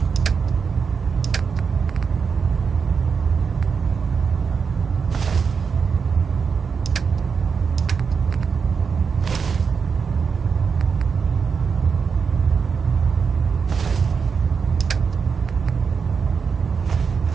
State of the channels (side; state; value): left; quieter; 5.8 dB